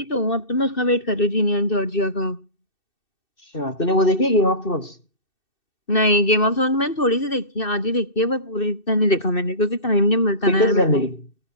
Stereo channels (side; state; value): right; late; 2.6 ms